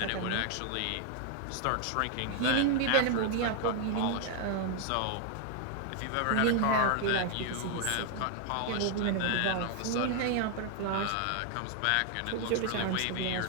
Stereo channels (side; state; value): both; different; correlation 0.00